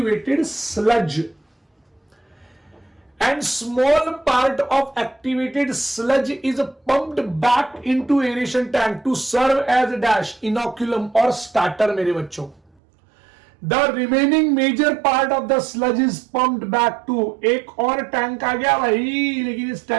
sludge. And small part of activated sludge is pumped back into aeration tank to serve as a dash, inoculum or starter मेरे बच्चों। The remaining major part of the sludge is pumped back to, एक और tank आ गया भाई, लेकिन इस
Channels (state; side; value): drops out; left; at 12.7 s